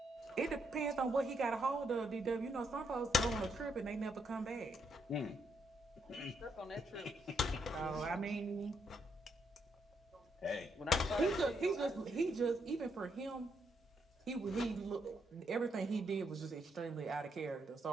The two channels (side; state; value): both; normal; correlation 0.76